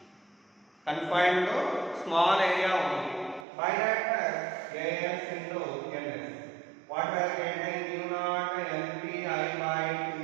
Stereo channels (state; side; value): drops out; left; at 3.5 s